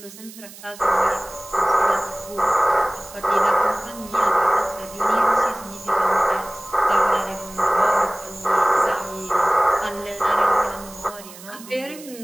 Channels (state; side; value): noise; right; hiss, 18 dB below the sound